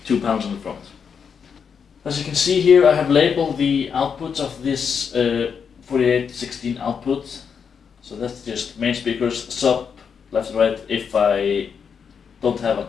2 panels on the front. As you can see here, I have labeled the outputs of this 4816 output. So that's just main speakers, sub, left and right, if I don't have a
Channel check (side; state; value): right; quieter; 6.6 dB